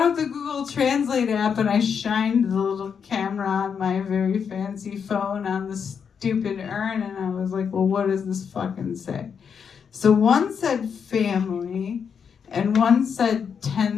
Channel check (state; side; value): quieter; right; 6.8 dB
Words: out the Google Translate app and I shined the little camera on my very fancy phone on the stupid urn, and I was like, well, what does this fucking say? So one said family, and one said